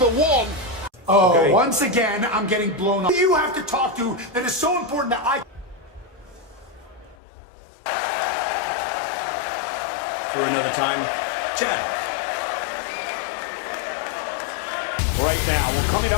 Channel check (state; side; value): drops out; right; at 7.2 s